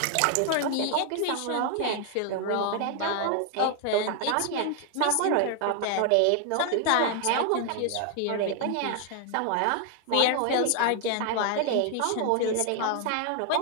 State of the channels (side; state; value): both; different; correlation 0.00